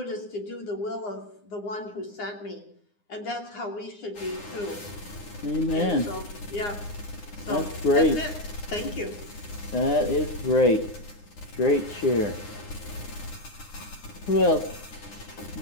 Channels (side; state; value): right; late; 9.7 ms